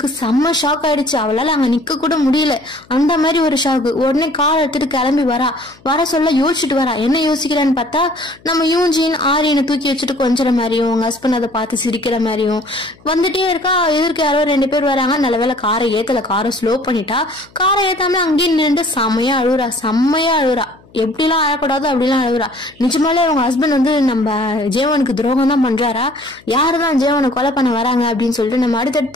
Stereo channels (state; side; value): noise; left; hum, 28 dB below the sound